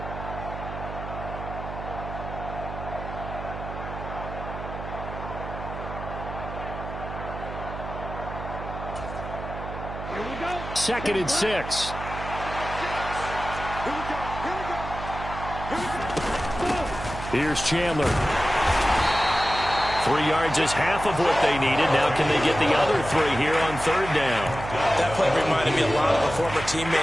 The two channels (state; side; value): noise; right; hum, 9 dB below the sound